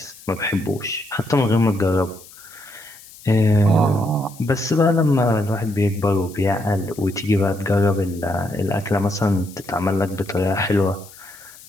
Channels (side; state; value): left; noise; hiss, 21 dB below the sound